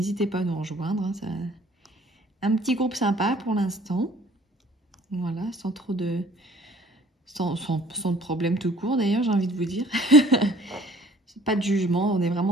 pas à nous rejoindre. Hein, ça... Un petit groupe sympa pour l'instant. Voilà, sans trop de... Sans de problème tout court, d'ailleurs, j'ai envie de vous dire. Pas de jugement, on est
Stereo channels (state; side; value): normal; both; correlation 0.55